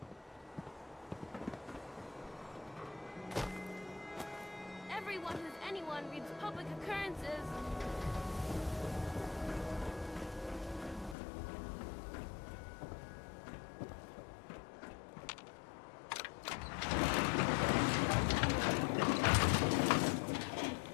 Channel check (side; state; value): right; drops out; at 11.2 s